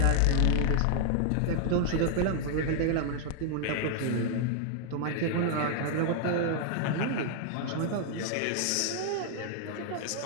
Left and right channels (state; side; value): different; both; correlation 0.00